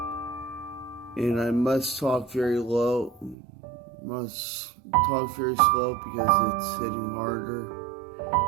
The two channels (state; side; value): drops out; left; at 3.4 s